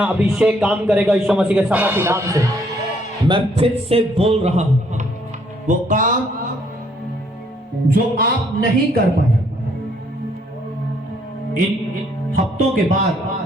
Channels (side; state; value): both; normal; correlation 0.67